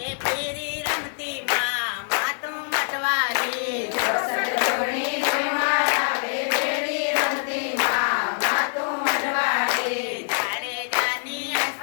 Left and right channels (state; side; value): silent; right; 62 dB below the other